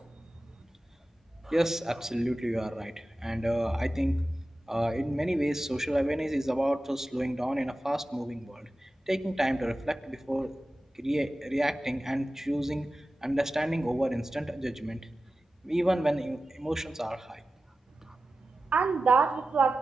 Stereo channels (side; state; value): both; normal; correlation 0.94